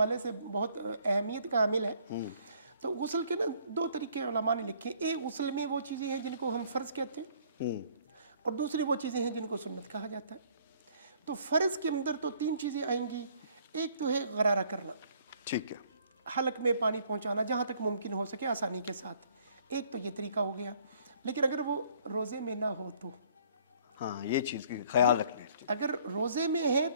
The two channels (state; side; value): inverted; both; correlation -0.60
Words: से बहुत अहमियत का हामिल है। तो गुस्ल के ना दो तरीके उलमा ने लिखे। एक गुस्ल में वो चीज़ें हैं जिनको हम फ़र्ज़ कहते हैं और दूसरी वो चीज़ें हैं जिनको सुन्नत कहा जाता है। तो फ़र्ज़ के अंदर तो तीन चीज़ें आएंगी। एक तो है गरारा करना, ठीक है, हलक में पानी पहुंचाना जहां तक मुमकिन हो सके आसानी के साथ। एक तो ये तरीका हो गया। लेकिन अगर वो रोज़े में ना हो तो, हाँ, ये चीज़ की ख्याल रखना है। अगर रोज़े में है